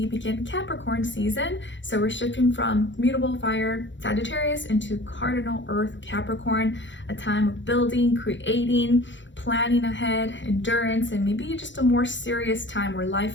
begin Capricorn season. So we're shifting from mutable fire Sagittarius into cardinal earth Capricorn, a time of building, creating, planning ahead, endurance, and maybe just a more serious time where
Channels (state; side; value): late; right; 0.54 ms